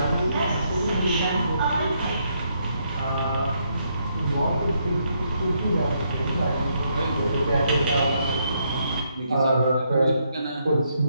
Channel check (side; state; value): both; inverted; correlation -0.76